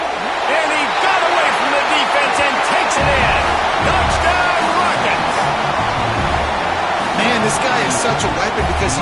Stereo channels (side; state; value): both; identical; correlation 1.00